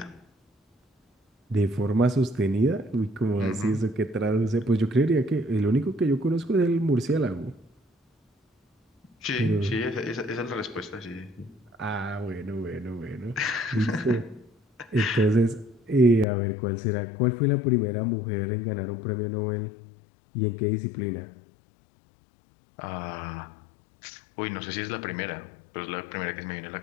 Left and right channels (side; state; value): right; drops out; at 16.2 s